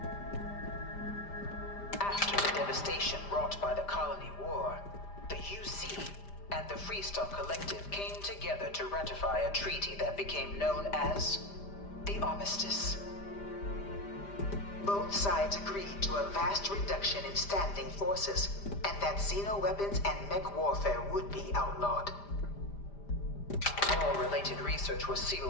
After the devastation wrought by the colony war, the UC and the Freestar Collective came together to ratify a treaty that became known as the Armistice. Both sides agreed to a vast reduction in standing forces, and that xeno-weapons and mech warfare would be outlawed. All related research was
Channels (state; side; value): late; right; 5.0 ms